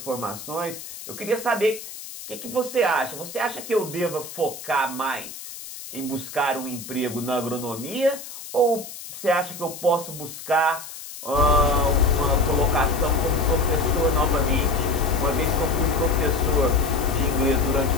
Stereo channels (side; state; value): left; noise; hiss, 12 dB below the sound